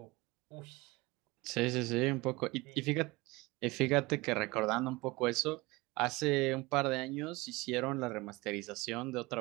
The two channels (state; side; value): quieter; left; 22.4 dB